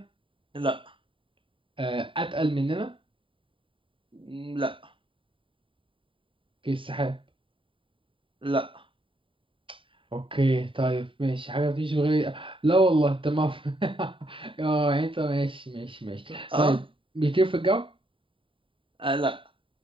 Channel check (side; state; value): left; late; 0.25 ms